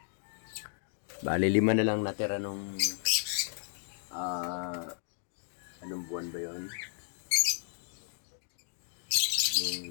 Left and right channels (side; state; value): right; silent; digital silence